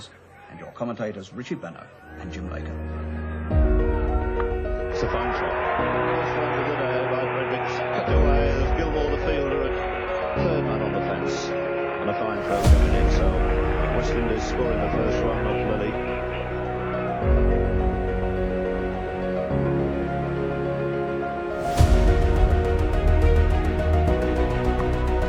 and your commentators Richie Benno and Jim Baker. It's a fine shot. First one of the day by Fredericks. Cut away. There's Gilmore, the fielder, at third man on the fence. And a fine throw coming in. So West Indies scoring the first run off Lily.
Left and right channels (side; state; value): both; identical; correlation 1.00